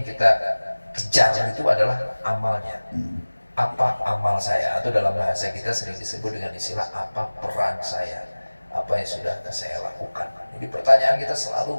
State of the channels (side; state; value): both; inverted; correlation -1.00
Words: kita kejar itu adalah amalnya. Apa amal saya? Atau dalam bahasa kita sering disebut dengan istilah apa peran saya? Apa yang sudah saya lakukan? Jadi pertanyaan kita